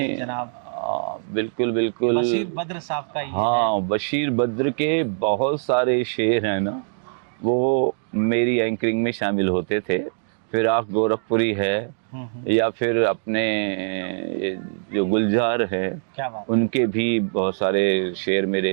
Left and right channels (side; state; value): left; silent; digital silence